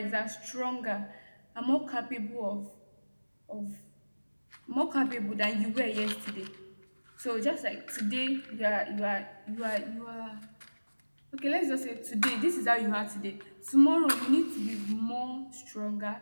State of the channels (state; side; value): inverted; both; correlation -1.00